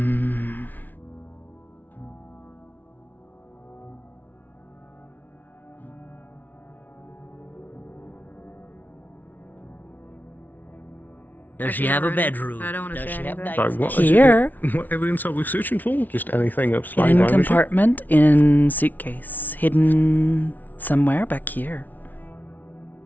Does she have a bedroom? I don't want to Does say she have anything. Like, what, Here. What evidence are we searching for? Just anything of slight Hidden damage? compartment in suitcase. Hidden somewhere back here.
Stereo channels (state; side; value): late; right; 0.081 ms